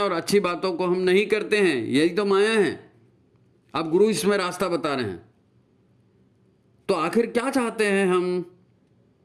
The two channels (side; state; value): both; identical; correlation 1.00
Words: और अच्छी बातों को हम नहीं करते हैं। यही तो माया है। अब गुरु इसमें रास्ता बता रहे हैं। तो आखिर क्या चाहते हैं